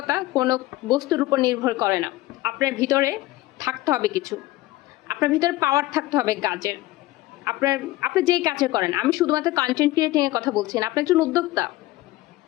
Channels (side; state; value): right; quieter; 17.4 dB